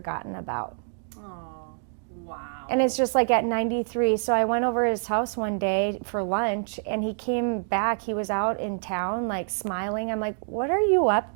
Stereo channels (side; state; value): left; silent; digital silence